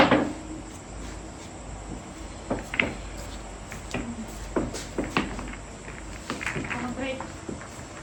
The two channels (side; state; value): both; identical; correlation 1.00